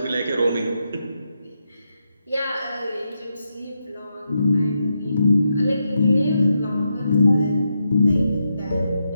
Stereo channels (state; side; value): inverted; both; correlation -0.84